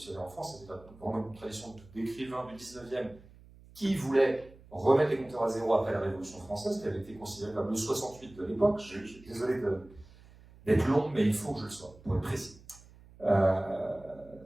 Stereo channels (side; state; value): right; noise; hum, 23 dB below the sound